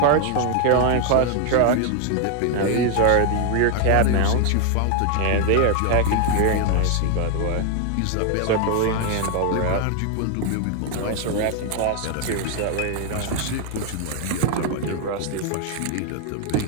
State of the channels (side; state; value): both; different; correlation 0.00